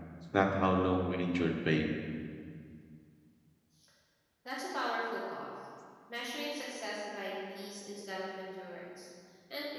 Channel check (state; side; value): identical; both; correlation 1.00